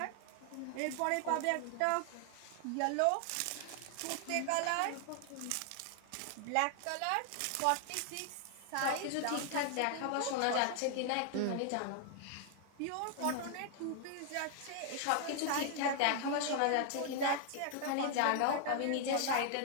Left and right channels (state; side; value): different; both; correlation 0.00